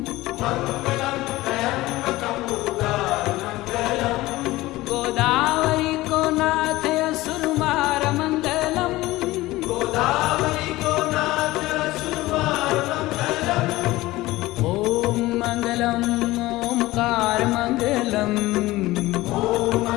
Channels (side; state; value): right; quieter; 18.4 dB